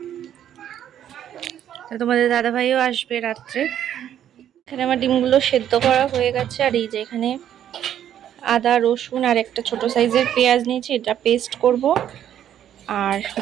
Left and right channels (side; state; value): left; quieter; 10.4 dB